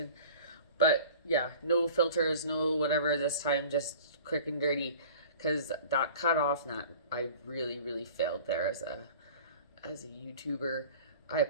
But yeah, no filters, no whatever this time, just quick and dirty. Because that cut off, and that I really failed there as a YouTuber. I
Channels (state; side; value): inverted; both; correlation -0.43